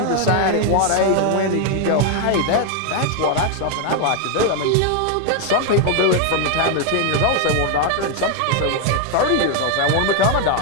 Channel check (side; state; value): both; different; correlation 0.01